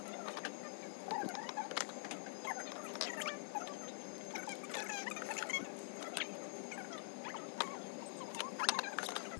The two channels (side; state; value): right; silent; digital silence